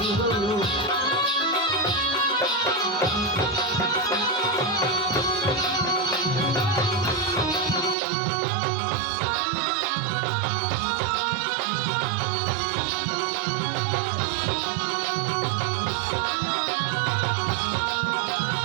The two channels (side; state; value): left; drops out; at 8.0 s